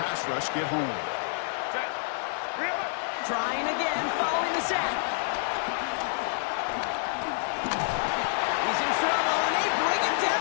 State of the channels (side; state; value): right; silent; digital silence